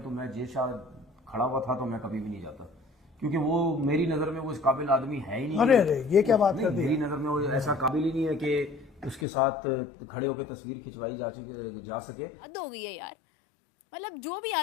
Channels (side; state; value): right; drops out; at 9.2 s